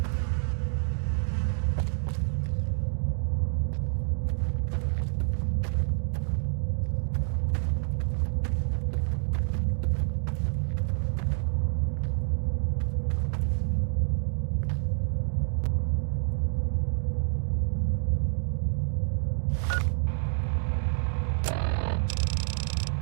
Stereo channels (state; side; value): silent; left; digital silence